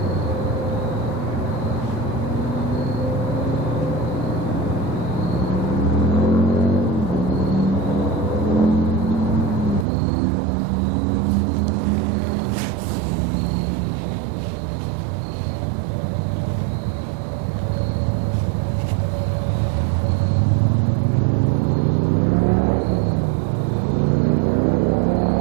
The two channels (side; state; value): left; drops out; at 9.9 s